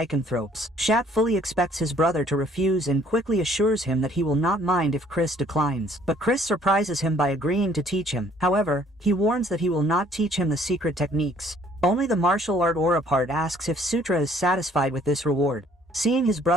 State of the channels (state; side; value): normal; both; correlation 0.60